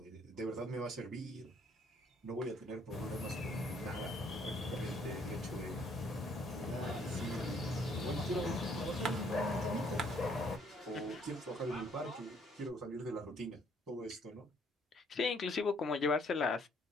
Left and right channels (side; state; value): both; normal; correlation 0.65